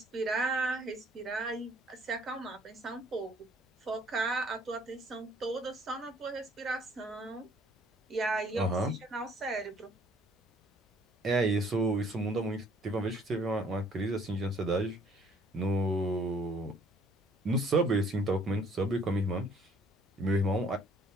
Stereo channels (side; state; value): both; normal; correlation 0.60